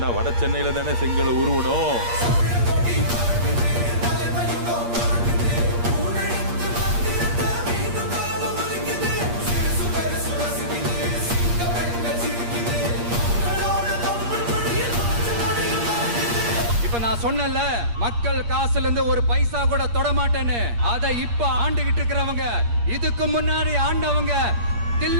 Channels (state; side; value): late; left; 8.5 ms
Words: வட சென்னையில தானே செங்கலை உருவணும். இப்ப நான் சொன்னல, மக்கள் காசுல இருந்து ஒரு பைசா கூட தொட மாட்டேன்னு. அதை இப்ப ஆண்டுகிட்டு இருக்கிறவங்க, இதுக்கு முன்னாடி ஆண்டவங்க